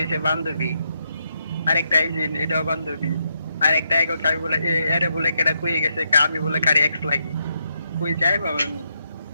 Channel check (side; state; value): both; inverted; correlation -0.80